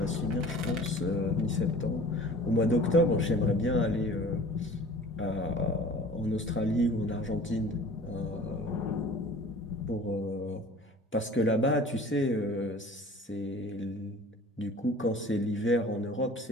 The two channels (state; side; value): normal; both; correlation 0.45